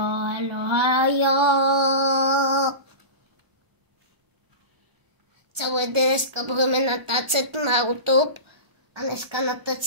Celé dneska budeme natáčet na YouTube a dneska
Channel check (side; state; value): left; late; 1.0 ms